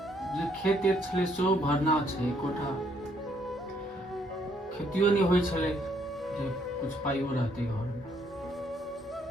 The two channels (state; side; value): normal; both; correlation 0.69